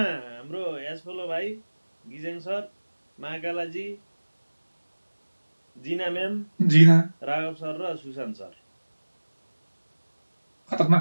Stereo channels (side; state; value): both; inverted; correlation -1.00